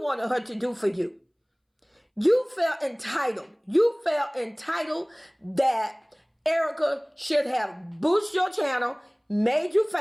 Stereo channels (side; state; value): both; identical; correlation 1.00